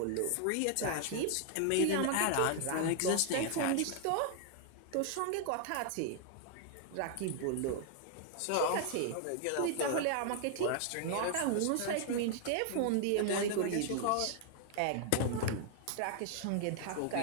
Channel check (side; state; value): both; different; correlation 0.00